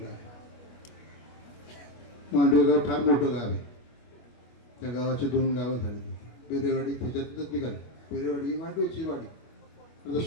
आहे. मांडवे गाव फार मोठं गाव आहे. त्या गावाचे 2 गावं झाली. पेरेवाडी त्याच्यातच निघाली. पेरेवाडी ही मांडवेची वाडी, आता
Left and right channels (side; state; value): right; late; 25 ms